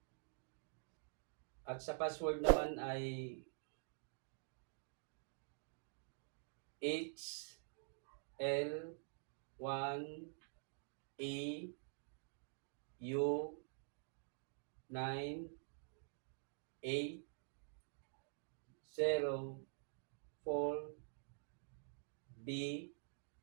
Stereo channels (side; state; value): left; silent; digital silence